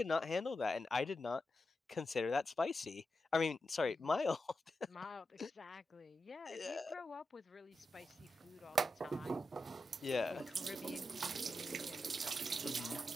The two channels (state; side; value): normal; both; correlation 0.88